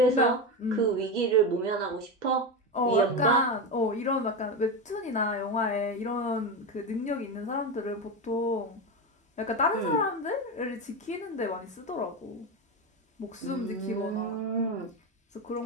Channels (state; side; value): normal; both; correlation 0.16